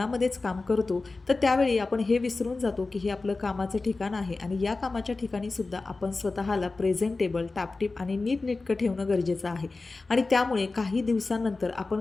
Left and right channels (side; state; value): right; quieter; 3.6 dB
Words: काम करतो तर त्यावेळी आपण हे विसरून जातो की हे आपलं कामाचं ठिकाण आहे आणि या कामाच्या ठिकाणीसुद्धा आपण स्वतःला प्रेझेंटेबल, टापटीप आणि नीटनेटकं ठेवणं गरजेचं आहे. आणि त्यामुळे काही दिवसांनंतर